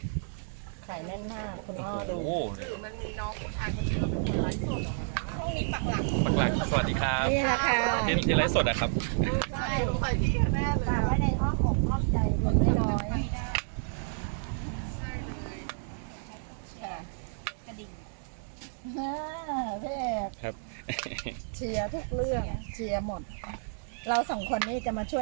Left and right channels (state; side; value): silent; left; digital silence